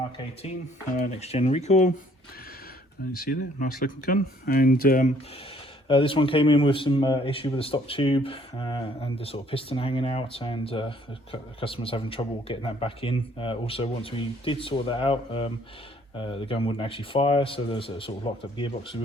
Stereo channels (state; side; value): normal; both; correlation 0.62